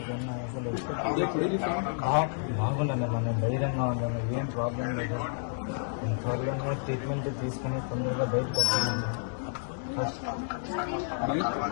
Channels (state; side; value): silent; right; digital silence